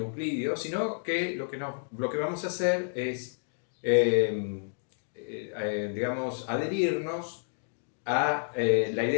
sino que lo que vamos a hacer es, digamos, adherirnos a la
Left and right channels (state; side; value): silent; right; digital silence